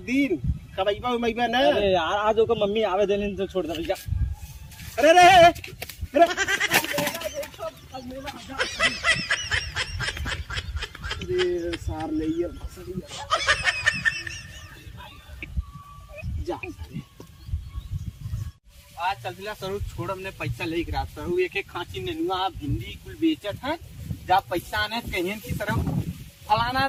दिन कबैबा उमैबा ना। अरे यार आज ओकर मम्मी आवे देने तो छोड़ दे भैया। अरे अरे सार ले जा आज चलतिला सरू छोड़ हमने पैसा ले गिरा सरू एक खांची नेनुआ भिंडी कुल बेचत है जब पैसा आने कहीं की सरू फलाना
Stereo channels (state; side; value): identical; both; correlation 1.00